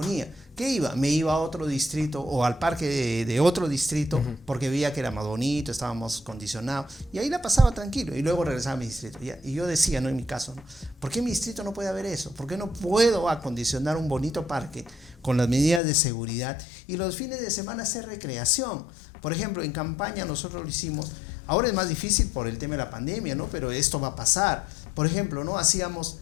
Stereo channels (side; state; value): right; drops out; at 15.8 s